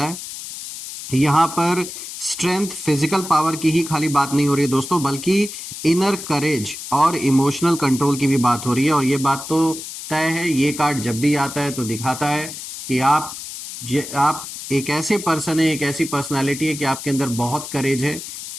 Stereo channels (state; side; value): noise; left; hiss, 10 dB below the sound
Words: है। यहाँ पर स्ट्रेंथ फिजिकल पावर की ही खाली बात नहीं हो रही है दोस्तों, बल्कि इनर करेज और इमोशनल कंट्रोल की भी बात हो रही है। और ये बात तो तय है, ये कार्ड जब भी आता है तो दिखाता है कि आप एक ऐसे पर्सन है, एक ऐसी पर्सनालिटी है कि आपके अंदर बहुत करेज है।